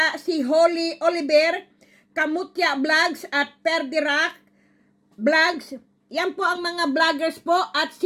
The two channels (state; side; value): identical; both; correlation 1.00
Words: si Holly Oliver, Kamutya Vlogs at Perdirac Vlogs. Yan po ang mga vloggers po. At